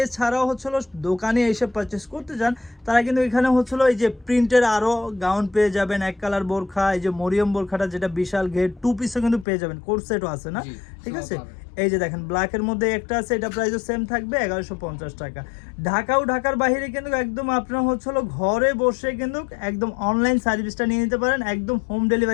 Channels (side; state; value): right; drops out; at 9.5 s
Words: হচ্ছে দোকানে এসে পারচেস করতে চান তারা কিন্তু এখানে হচ্ছে এই যে প্রিন্টের আরও গাউন পেয়ে যাবেন, এক কালার বোরখা, এই যে মরিয়ম বোরখাটা যেটা বিশাল ঘের, 2 পিসও কিন্তু পেয়ে যাবেন, কোর্স সেটও আছে না, ঠিক আছে। এই যে দেখেন ব্ল্যাকের মধ্যে একটা আছে, এটা প্রাইসও সেম থাকবে 1150 টাকা। ঢাকার বাইরে কিন্তু একদম আপনারা হচ্ছে ঘরে বসে কিন্তু একদম অনলাইন সার্ভিসটা নিয়ে নিতে পারেন, একদম হোম